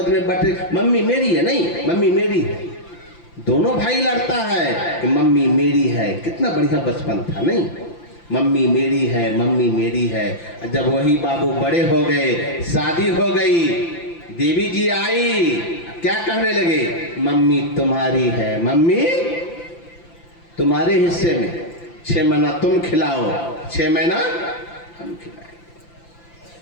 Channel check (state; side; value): late; right; 5.9 ms